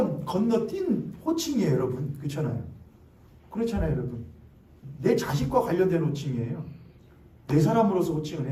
건너뛴 호칭이에요, 여러분. 그렇잖아요. 그렇잖아요, 여러분. 내 자식과 관련된 호칭이에요. 내 사람으로서 호칭을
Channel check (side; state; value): both; identical; correlation 1.00